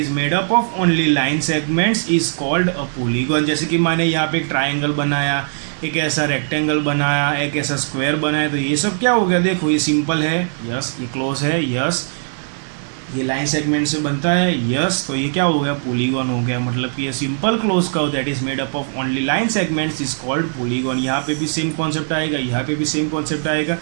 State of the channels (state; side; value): silent; left; digital silence